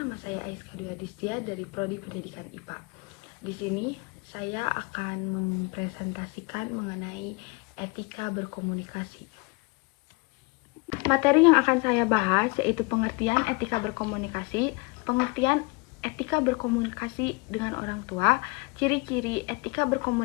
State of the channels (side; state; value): right; quieter; 28.7 dB